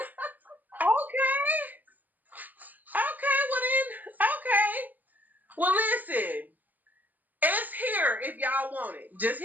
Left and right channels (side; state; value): left; late; 0.083 ms